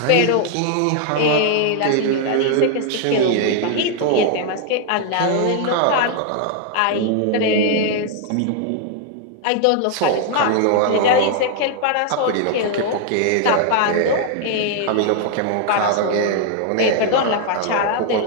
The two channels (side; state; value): both; different; correlation 0.00